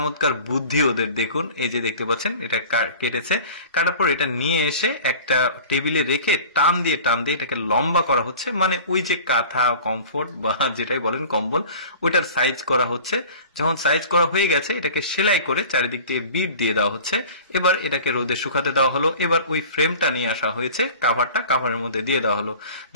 বুদ্ধি ওদের। দেখুন এই যে দেখতে পাচ্ছেন এটা কেটেছে। কাটার পর এটা নিয়ে এসে একটা টেবিলে রেখে টান দিয়ে এটাকে লম্বা করা হচ্ছে। মানে ওই যে কাঁথা, কমফোর্ট বা যেটাই বলেন কম্বল, ওইটার সাইজ করা হচ্ছে। যখন সাইজ করা হয়ে গেছে এটাকে সেলাই করে চারিদিক থেকে বিট দিয়ে দেওয়া হচ্ছে। এবার এটাকে রোদে শুকাতে দেওয়া হলো। এবার ওই ফ্রেমটা নিয়ে আসা হয়েছে, কাভারের মধ্যে দিয়ে দেওয়া হলো।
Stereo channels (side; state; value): both; inverted; correlation -0.41